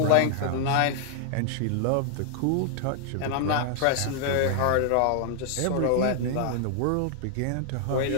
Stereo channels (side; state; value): both; different; correlation 0.00